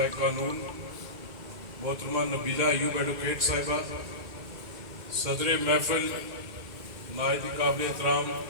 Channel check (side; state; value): left; late; 2.1 ms